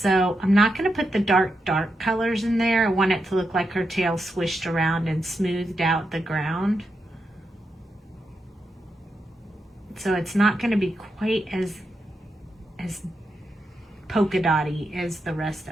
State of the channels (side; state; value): both; normal; correlation 0.85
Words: I'm not going to put the dark colors in there. I want it to look like her tail swished around and smoothed out the ground. So it's not going to be quite as polka dotty as the rest